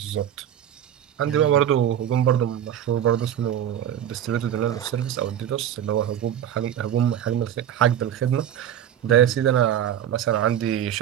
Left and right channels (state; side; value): quieter; left; 10.3 dB